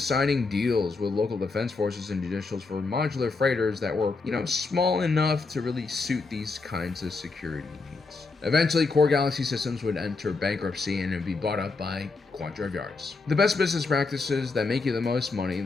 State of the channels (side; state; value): right; quieter; 4.0 dB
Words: signing deals with local defense forces and judicials for modular freighters that were, small enough to really suit these kinds of security needs. Eventually, Core Galaxy Systems would enter bankruptcy and it would be bought up by Quadrive Yards. The best business practices that make you the most money,